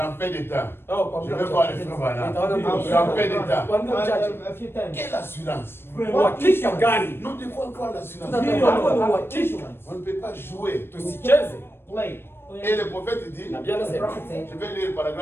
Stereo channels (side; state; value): right; late; 0.11 ms